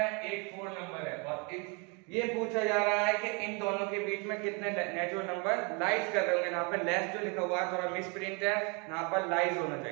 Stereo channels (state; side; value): quieter; left; 32.7 dB